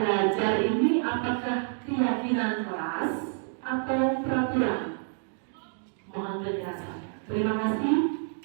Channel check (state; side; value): silent; left; 59 dB below the other